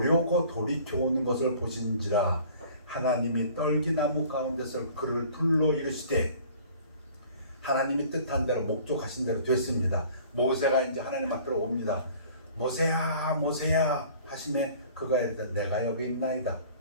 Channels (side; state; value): both; inverted; correlation -0.50